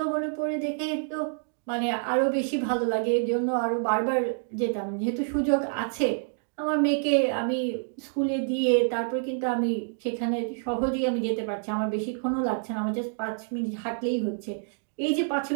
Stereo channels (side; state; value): left; silent; digital silence